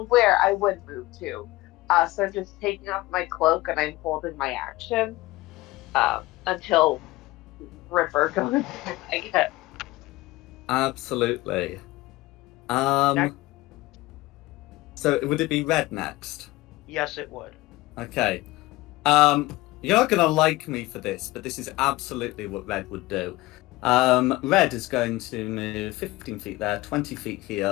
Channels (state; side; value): quieter; right; 19.2 dB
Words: where I would move to. So I'm just taking off my cloak and I'm holding my action until Ripper goes, I guess. Absolutely. Next. So would it be Red next? Yes, it would. Okay. You're not gonna like me for this, but this is absolutely what Red would do. Red is going to move 15 feet there, 20 feet